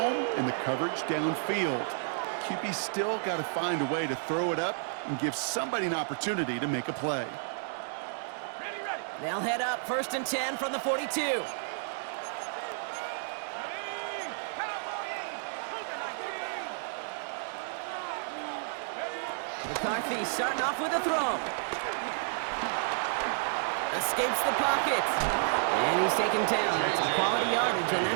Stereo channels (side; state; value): left; silent; digital silence